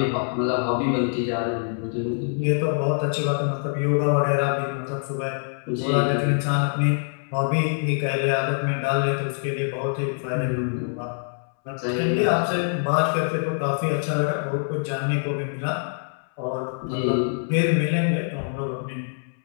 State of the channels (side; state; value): right; silent; 62 dB below the other